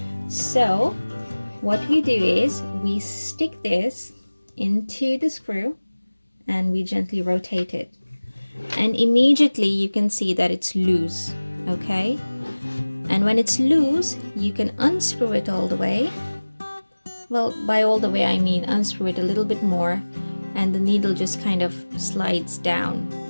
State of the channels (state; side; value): inverted; both; correlation -1.00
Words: So what we do is we stick this into the screw and we gently rotate it. And immediately you can see that it's loose, okay? And when it's loose, you can unscrew it all the way. Well, by all the way, I mean unscrew it a little bit more and the needle just kind of slides down.